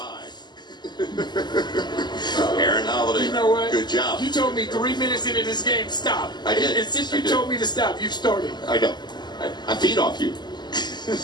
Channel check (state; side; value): late; right; 0.21 ms